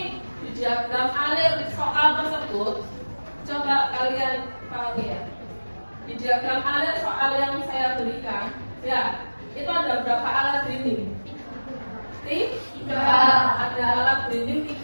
di diagram alir soal tersebut coba kalian pahami ya. Di diagram alir soal yang saya berikan, ya itu ada berapa alat grinding? 3. Ada alat grinding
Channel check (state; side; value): inverted; both; correlation -1.00